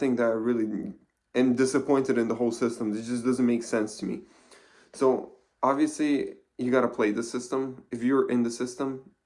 that I really am disappointed in the whole system. It just doesn't make sense to me. So obviously you got to play the system. If you're in the system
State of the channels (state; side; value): identical; both; correlation 1.00